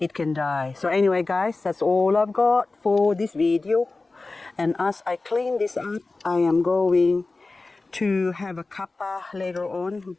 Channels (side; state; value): right; quieter; 3.5 dB